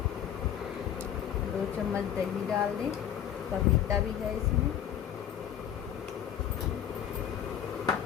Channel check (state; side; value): quieter; right; 9.9 dB